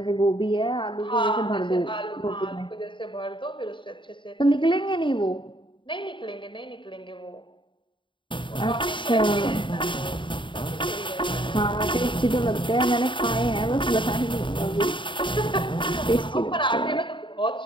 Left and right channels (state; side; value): late; right; 0.24 ms